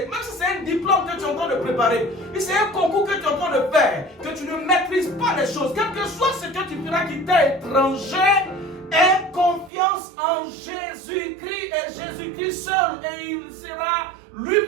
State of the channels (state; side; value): drops out; left; at 9.7 s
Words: même si c'est un diplôme que tu es en train de préparer, si c'est un concours que tu es en train de faire, que tu ne maîtrises pas les choses, quel que soit ce que tu feras qui t'est étranger, aie confiance en Jésus-Christ et Jésus-Christ seul, et il sera